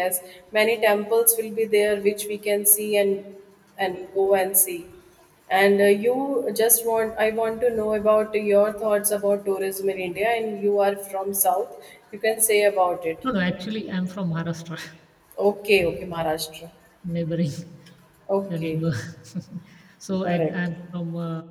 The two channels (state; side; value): identical; both; correlation 1.00